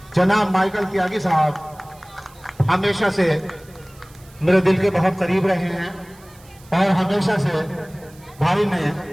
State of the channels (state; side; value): noise; right; hiss, 26 dB below the sound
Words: जनाब माइकल त्यागी साहब हमेशा से मेरे दिल के बहुत करीब रहे हैं और हमेशा से भाई ने